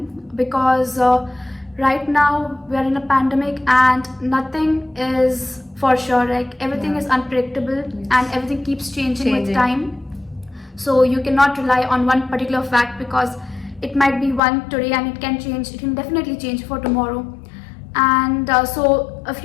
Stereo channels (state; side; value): drops out; right; at 14.4 s